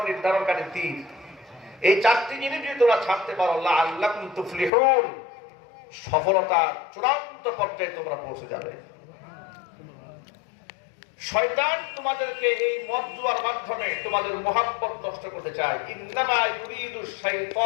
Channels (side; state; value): right; drops out; at 4.7 s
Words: নির্ধারণকারী তীর। এই চারটি জিনিস যদি তোমরা ছাড়তে পারো, লাআল্লাকুম তুফলিহুন, সফলতার চূড়ান্ত পর্যায়ে তোমরা পৌঁছে যাবে। শয়তান তোমাদেরকে এই মদ জুয়ার মাধ্যমে তোমাদের মুহাব্বত নষ্ট করতে চায়। ইন্নামা ইউরিদু